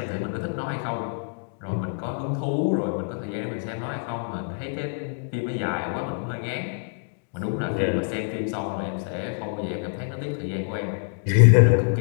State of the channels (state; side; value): silent; right; digital silence